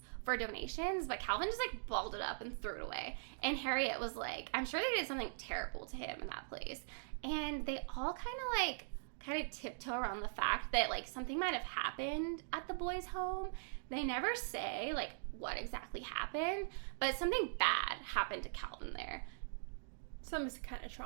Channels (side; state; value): left; silent; digital silence